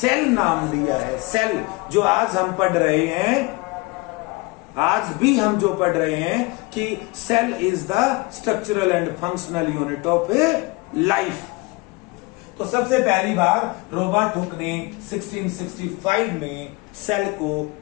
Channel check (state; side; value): quieter; right; 24.6 dB